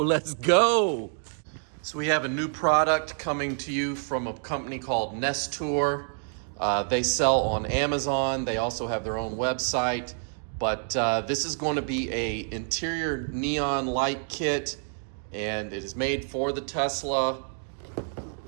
go. So we have a new product coming to you from a company called Nestour. They sell on Amazon. They also have their own website, but this is going to be a interior neon light kit, and it is made for the Tesla.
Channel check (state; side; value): silent; left; 60 dB below the other